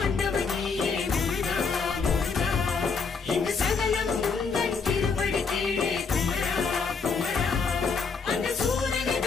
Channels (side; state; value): right; quieter; 5.0 dB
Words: முருகா முருகா இங்கு சகலம் உந்தன் திருவடி கீழே குமரா குமரா அந்த சூரனை